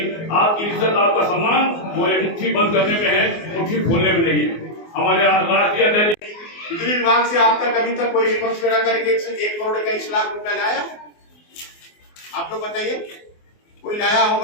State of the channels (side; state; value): right; late; 24 ms